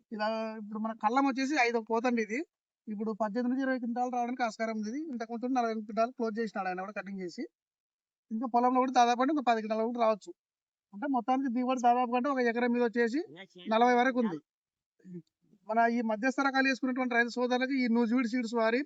ఇలా ఇప్పుడు మన కళ్ళం వచ్చేసి 5వ కోత అండి ఇది. ఇప్పుడు 18 నుంచి 20 క్వింటాలు రావడానికి ఆస్కారం ఉంది. ఇంతకుముందు 48 క్వింటాలు క్లోజ్ చేసినాడు ఆయన కూడా కటింగ్ చేసి. ఇంకా పొలంలో కూడా దాదాపు అంటే ఒక 10 క్వింటాలు కూడా రావచ్చు. అంటే మొత్తానికి దిగుబడి దాదాపు అంటే ఒక ఎకరం మీద వచ్చేసి 40 వరకు ఉంది. మన ఈ మధ్యస్థ రకాలు వేసుకున్నటువంటి రైతు సోదరులకు ఈ నూజివీడ్ సీడ్స్ వారి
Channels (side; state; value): both; identical; correlation 1.00